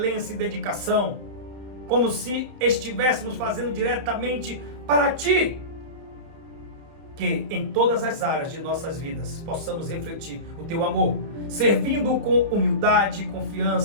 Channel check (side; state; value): left; late; 30 ms